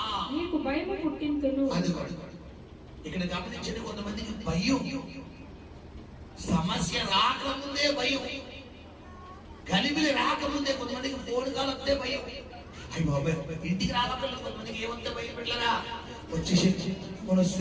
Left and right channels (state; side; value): identical; both; correlation 1.00